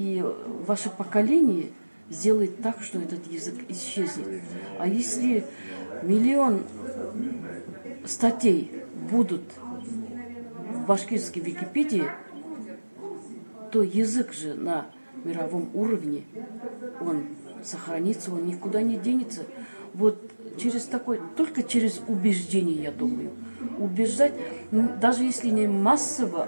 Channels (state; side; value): inverted; both; correlation -1.00